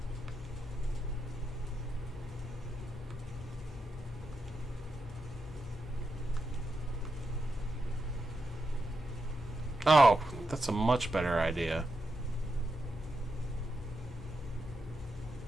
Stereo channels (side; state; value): both; normal; correlation 0.86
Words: Oh, that's a much better idea.